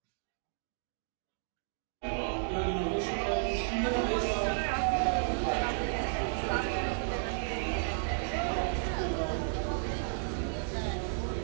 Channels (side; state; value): left; silent; digital silence